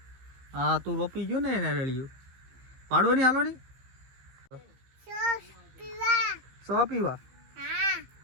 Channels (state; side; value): late; left; 15 ms